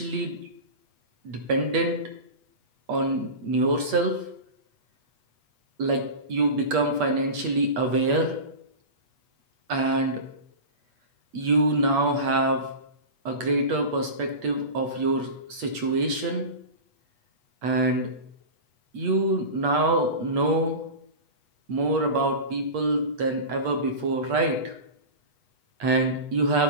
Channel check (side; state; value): left; late; 8.2 ms